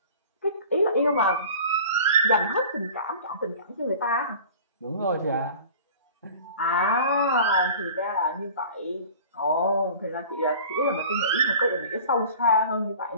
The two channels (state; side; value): inverted; both; correlation -0.42